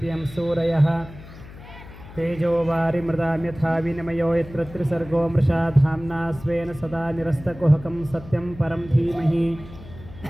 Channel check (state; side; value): noise; left; hum, 17 dB below the sound